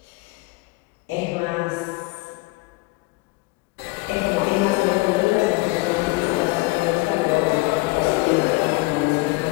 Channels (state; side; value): quieter; right; 23.8 dB